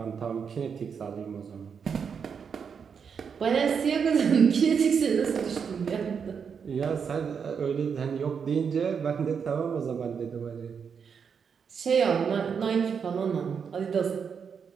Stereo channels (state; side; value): quieter; left; 6.6 dB